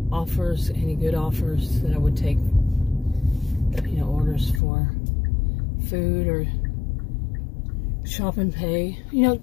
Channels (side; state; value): right; drops out; at 4.6 s